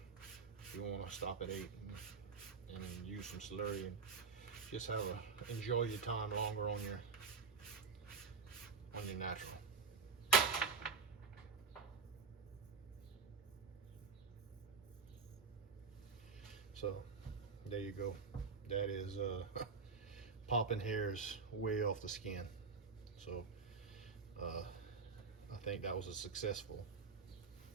if you want to stop at 8 and use some slurry and just have enjoy your time longer on your natural. So there you go. That is popping hairs way off the skin. So I think that was a successful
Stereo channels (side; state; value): left; quieter; 4.9 dB